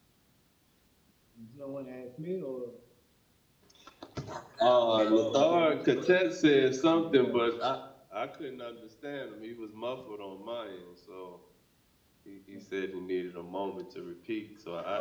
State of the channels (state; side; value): identical; both; correlation 1.00